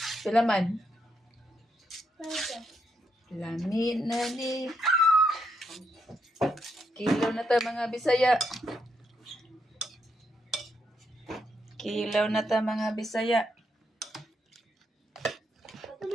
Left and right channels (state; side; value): normal; both; correlation 0.78